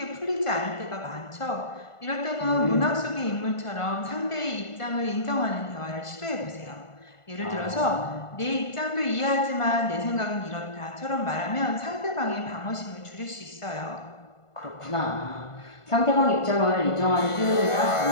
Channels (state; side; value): late; right; 1.5 ms